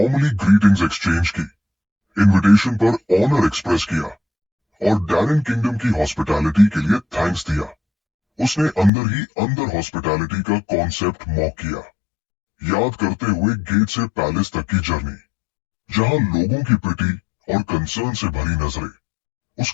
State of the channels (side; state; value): right; drops out; at 8.9 s